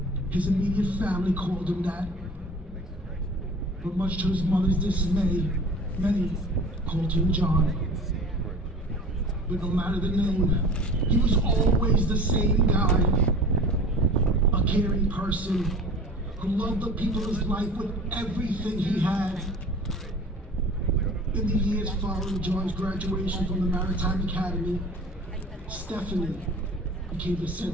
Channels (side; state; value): both; normal; correlation 0.41